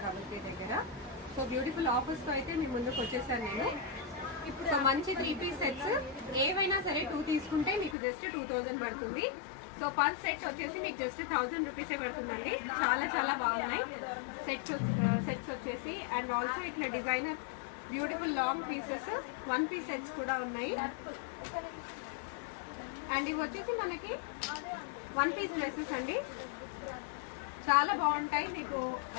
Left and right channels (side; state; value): right; drops out; at 8.0 s